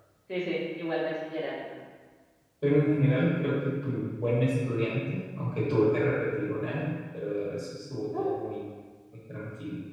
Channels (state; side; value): identical; both; correlation 1.00